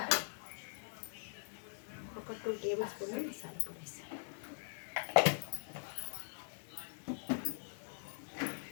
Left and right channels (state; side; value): silent; right; digital silence